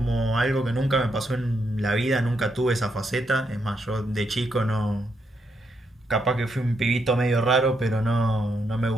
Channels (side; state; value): both; normal; correlation 0.79